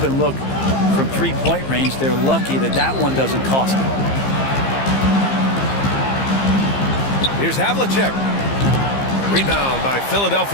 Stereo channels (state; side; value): late; right; 15 ms